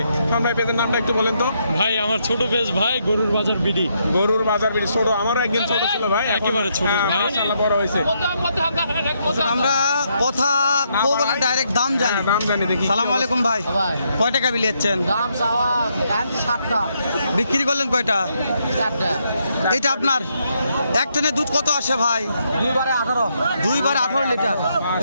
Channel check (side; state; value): both; inverted; correlation -0.77